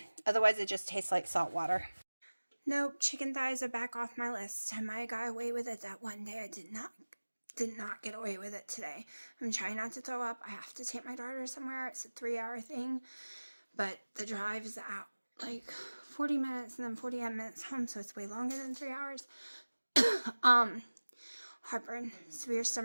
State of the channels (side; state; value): both; inverted; correlation -1.00